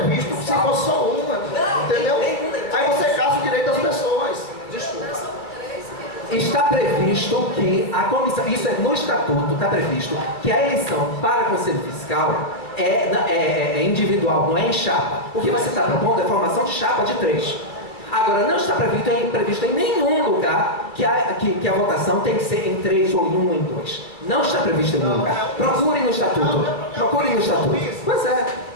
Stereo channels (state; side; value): late; right; 2.4 ms